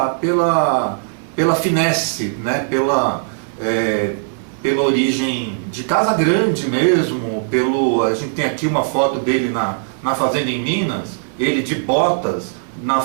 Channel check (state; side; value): silent; left; digital silence